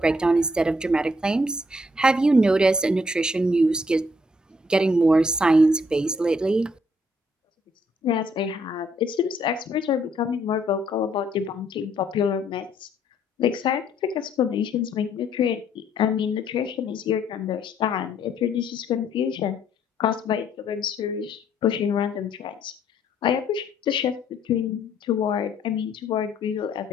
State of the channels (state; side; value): normal; both; correlation 0.68